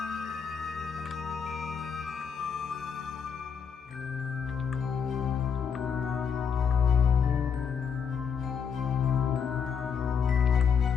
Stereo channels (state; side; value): quieter; right; 6.8 dB